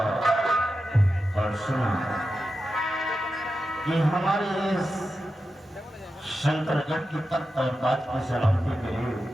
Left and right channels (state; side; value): normal; both; correlation 0.90